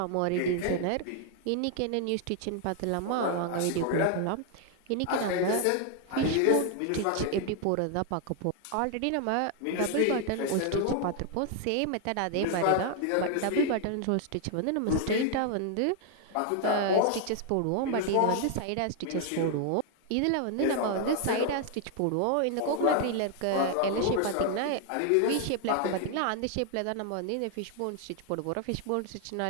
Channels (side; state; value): both; different; correlation 0.00